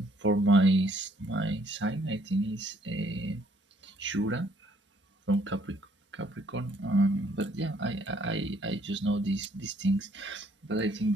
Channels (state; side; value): normal; both; correlation 0.65